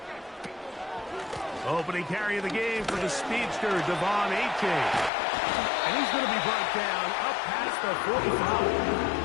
Opening carry of the game for the speedster, Devon Achane. And he's going to be brought down up past the 45.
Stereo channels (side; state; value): right; drops out; at 5.1 s